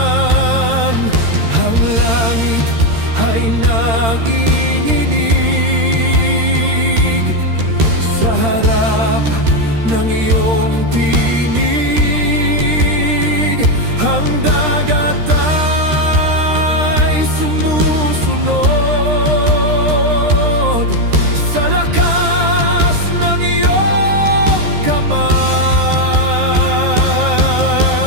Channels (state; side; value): late; left; 13 ms